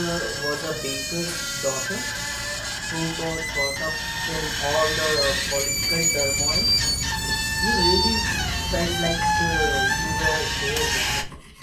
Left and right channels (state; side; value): identical; both; correlation 1.00